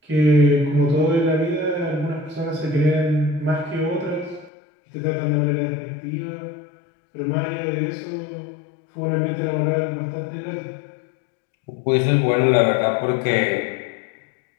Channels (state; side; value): drops out; right; at 4.5 s